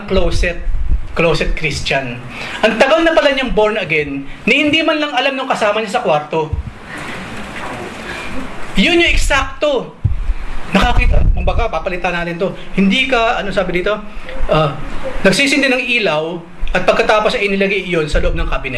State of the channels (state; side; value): identical; both; correlation 1.00